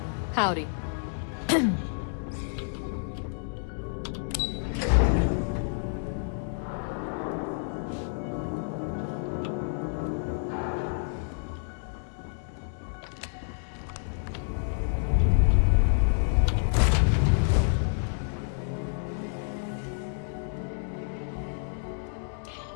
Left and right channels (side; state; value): right; silent; digital silence